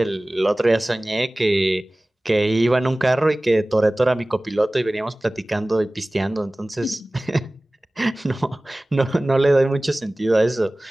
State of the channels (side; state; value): both; normal; correlation 0.98